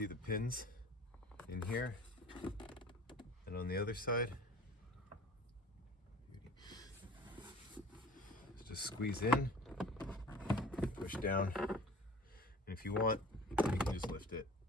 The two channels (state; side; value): normal; both; correlation 0.43